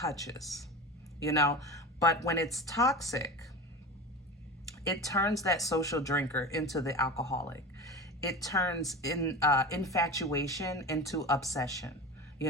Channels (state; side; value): normal; both; correlation 0.29